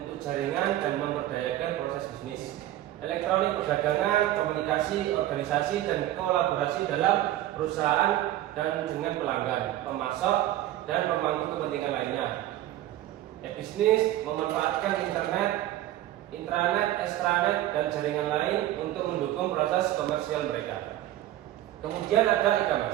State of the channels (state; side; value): quieter; left; 14.0 dB